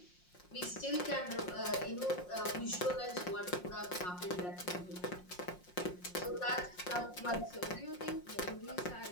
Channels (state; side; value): late; right; 5.6 ms